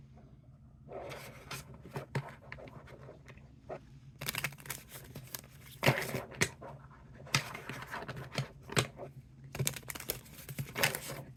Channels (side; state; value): both; identical; correlation 1.00